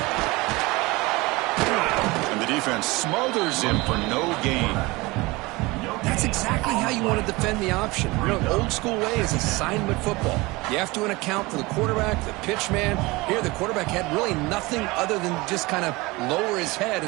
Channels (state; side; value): quieter; left; 22.8 dB